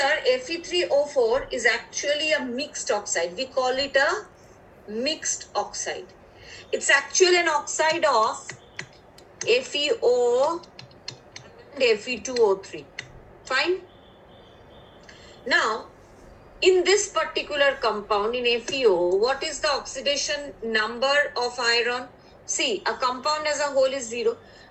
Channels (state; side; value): identical; both; correlation 1.00